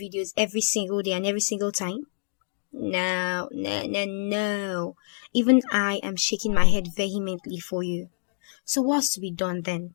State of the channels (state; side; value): silent; right; digital silence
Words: videos every single day and every single time? No, no, no, no. Even I am shaking my head vehemently for you. So what's to be done then?